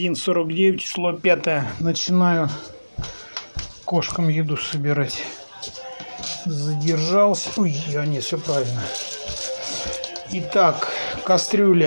число 5. Начинаю кошкам еду собирать. Задержался. Ой, не, все правильно. Итак,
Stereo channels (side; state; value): both; inverted; correlation -1.00